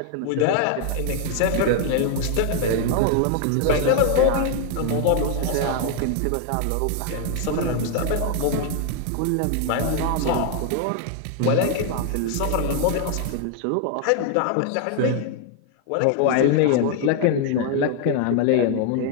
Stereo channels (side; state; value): both; different; correlation 0.00